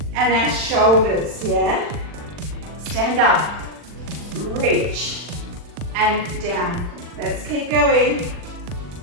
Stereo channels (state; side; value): late; left; 40 ms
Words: and our shoulders, yeah? Stand up, reach, and down. Let's keep going.